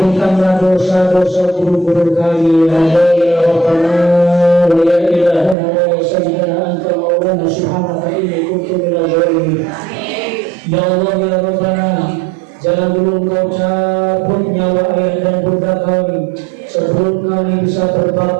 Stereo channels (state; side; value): drops out; left; at 5.6 s